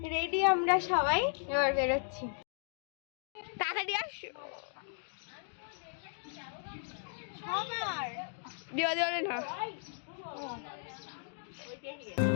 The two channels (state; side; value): silent; right; digital silence